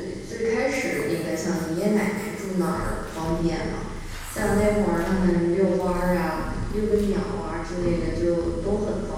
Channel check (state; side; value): identical; both; correlation 1.00